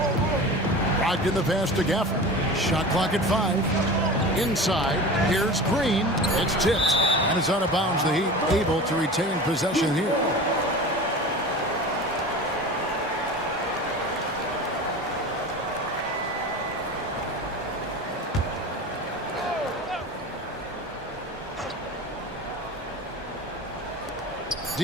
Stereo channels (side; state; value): both; normal; correlation 0.33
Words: Brogdon the pass to Gafford. Shot clock at 5. Inside, here's Green. It's tipped, and it's out of bounds. The Heat able to retain possession here.